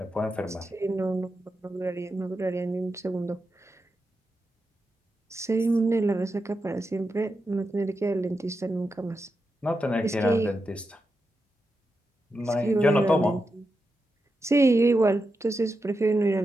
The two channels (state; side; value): normal; both; correlation 0.88